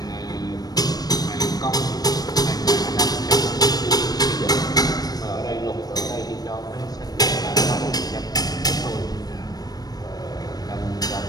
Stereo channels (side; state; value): right; late; 0.19 ms